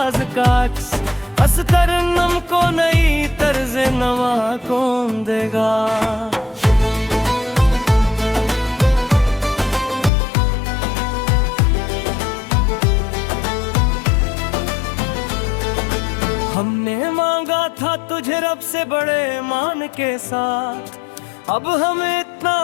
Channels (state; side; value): drops out; right; at 10.1 s